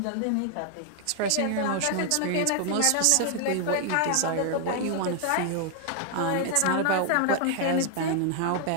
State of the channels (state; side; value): different; both; correlation 0.00